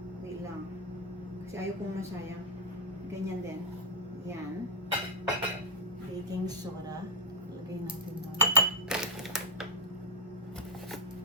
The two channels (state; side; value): normal; both; correlation -0.03